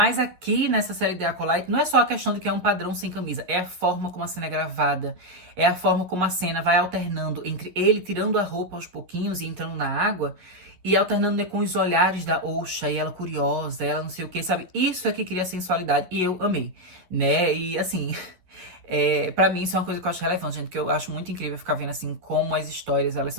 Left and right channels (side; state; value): left; late; 11 ms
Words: aqui, nessa série The Acolyte, não é só a questão de que é um padrão sem camisa, é a forma como a cena é gravada, é a forma como a cena vai alternando entre ele tirando a roupa aos pouquinhos e entrando na água, e alternando, né, com os olhares da Osha, e ela curiosa, ela não sei o que, sabe? Isso é que cria sensualidade, e eu amei, né? E assim... Pra mim, isso é uma coisa que eu acho relevante, gente, que eu acho muito incrível ficar vendo, assim, como as histórias, elas